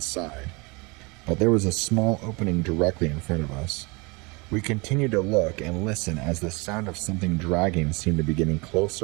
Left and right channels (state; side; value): quieter; left; 27.5 dB